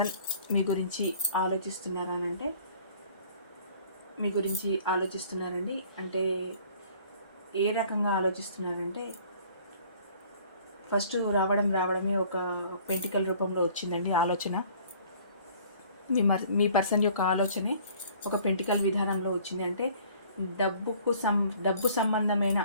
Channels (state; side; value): inverted; both; correlation -0.53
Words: మీ గురించి ఆలోచిస్తున్నారనంటే మీ గురించి ఆలోచిస్తున్నారండి. అంటే ఏ రకంగా ఆలోచిస్తున్నారంటే ఫస్ట్ రావడమే ఒక పెంటికల్ రూపంలో వచ్చిందండి ఆలోచన. మీ పర్సన్ యొక్క ఆలోచనే ఒక పెంటికల్ విధానంలో వచ్చింది. అంటే డబ్బు సంబంధమైన